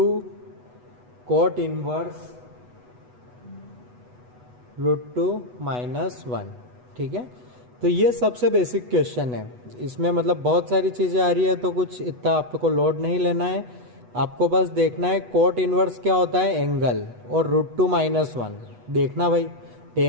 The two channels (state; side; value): late; left; 8.1 ms